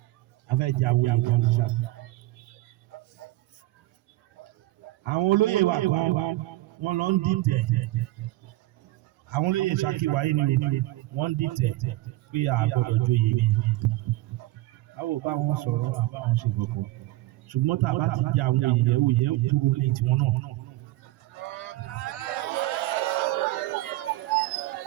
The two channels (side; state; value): left; quieter; 17.4 dB